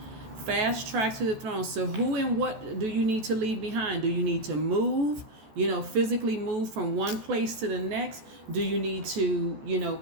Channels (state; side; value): late; left; 14 ms